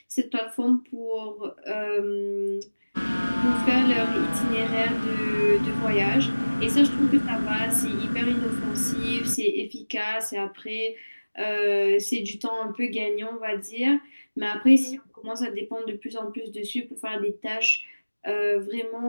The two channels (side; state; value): both; inverted; correlation -1.00